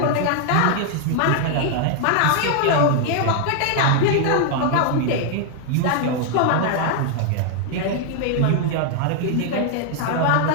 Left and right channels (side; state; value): both; different; correlation 0.00